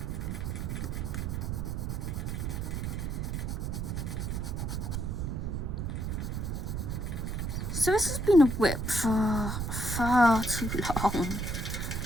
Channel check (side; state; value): right; noise; rumble, 2 dB below the sound